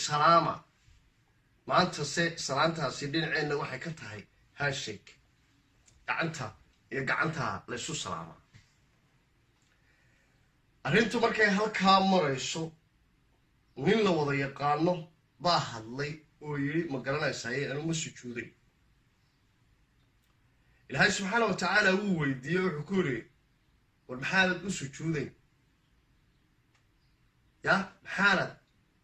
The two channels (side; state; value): both; identical; correlation 1.00